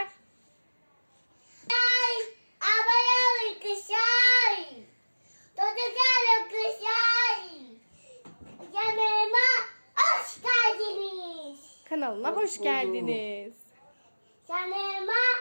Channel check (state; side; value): inverted; both; correlation -1.00